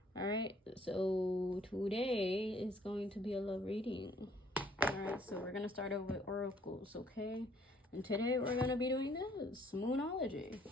All right, so today is going to be a love reading. All right, so we're gonna start over with oracles, okay? And today we're gonna be doing this Moonology.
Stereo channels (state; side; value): normal; both; correlation 0.62